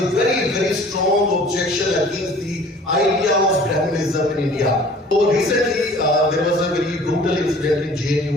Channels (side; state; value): both; normal; correlation 0.50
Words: a very, very strong objection against the idea of Brahmanism in India. So recently, there was a very brutal incident in